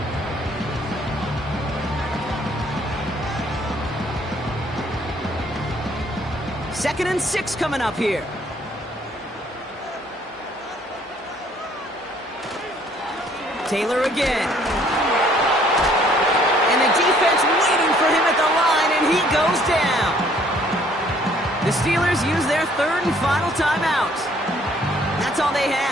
Second and 6 coming up here. Taylor again. And the defense waiting for him at the line, and he goes down. The Steelers use their third and final timeout. That's all they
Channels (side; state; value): both; normal; correlation 0.61